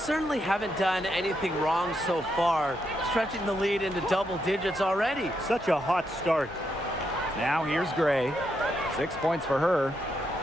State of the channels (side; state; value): both; normal; correlation 0.80